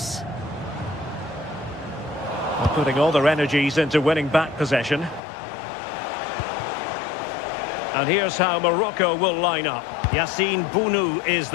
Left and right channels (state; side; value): drops out; right; at 5.2 s